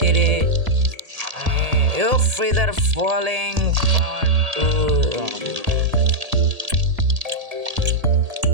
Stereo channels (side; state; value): left; late; 1.8 ms